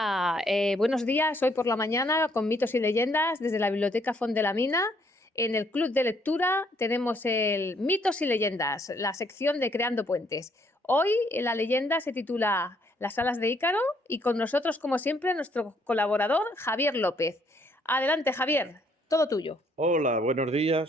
buenos días. Hoy por la mañana con Mitos y leyendas desde la Biblioteca Font de la Mina. En el club de lectura tenemos el Mitos y leyendas, la sección de Creando puentes. Hoy la leyenda se titula Las alas de Ícaro y con nosotros, como siempre, nuestro colaborador Javier López. Adelante, Javier, todo tuyo. Hola, buenos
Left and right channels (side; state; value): both; normal; correlation 0.68